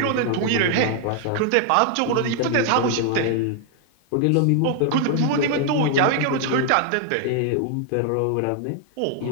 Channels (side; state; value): both; different; correlation 0.00